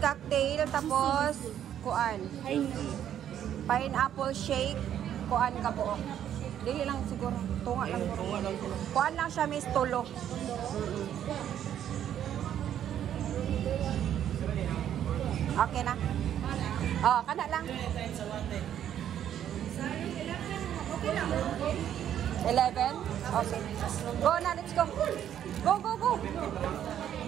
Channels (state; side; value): quieter; left; 10.3 dB